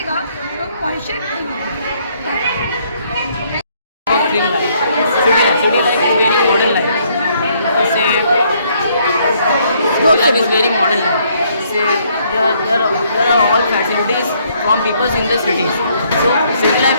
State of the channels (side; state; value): both; inverted; correlation -0.68